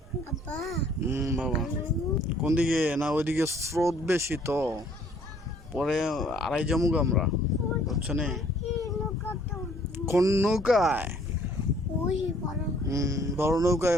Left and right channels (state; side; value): normal; both; correlation 0.60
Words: বাবা কোন দিকে না ওইদিকে স্রোত বেশি তো পরে আড়াই জমুক আমরা বুঝছো নি কোন নৌকায় বড়